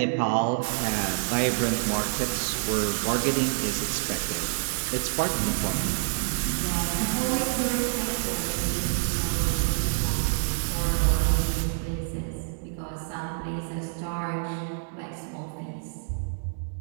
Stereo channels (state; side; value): silent; left; digital silence